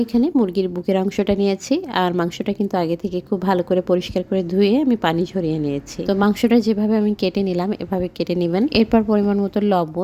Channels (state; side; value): identical; both; correlation 1.00